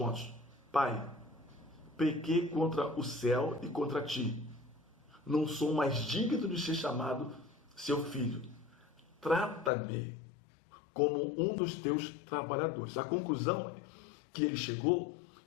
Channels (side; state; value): right; drops out; at 9.7 s